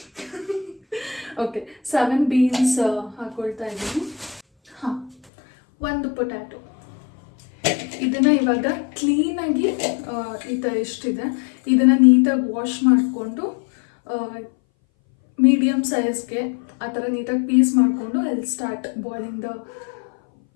7 ಬೀನ್ಸ್ ಹಾಕ್ಕೊಳ್ತಾ ಇದ್ದೀನಿ. 1 ಪೊಟ್ಯಾಟೊ. ಇದನ್ನು ಇವಾಗ ಕ್ಲೀನಾಗಿ ಎಷ್ಟಿದೆ ಇದನ್ನು ನೀಟಾಗಿ ವಾಶ್ ಮಾಡಿಕೊಂಡು ಮೀಡಿಯಮ್ ಸೈಜ್ಗೆ ಆ ಥರ ನೀಟಾಗಿ ಪೀಸ್ ಮಾಡಿಕೊಂಡು I will start boiling the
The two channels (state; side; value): drops out; right; at 5.2 s